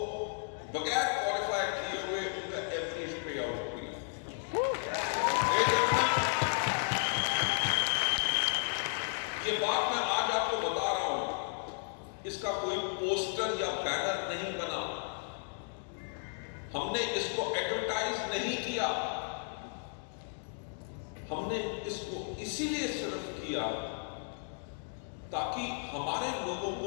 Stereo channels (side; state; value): right; silent; digital silence